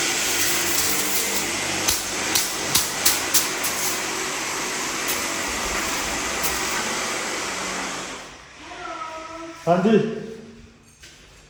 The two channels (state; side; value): identical; both; correlation 1.00